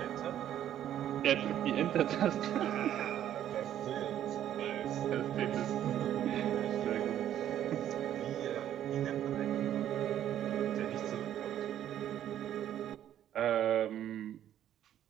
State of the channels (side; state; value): left; quieter; 11.1 dB